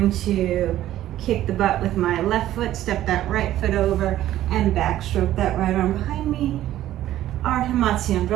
to kick the butt with my left foot, step that right foot over, and backstroke that right arm behind me. Ardha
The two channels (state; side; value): quieter; left; 13.4 dB